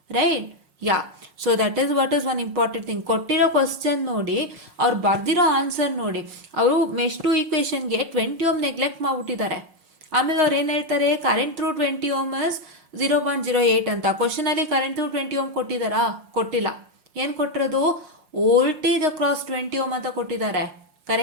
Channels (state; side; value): late; left; 5.5 ms